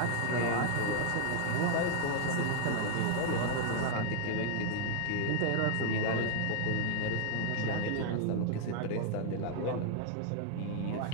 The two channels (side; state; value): both; different; correlation 0.00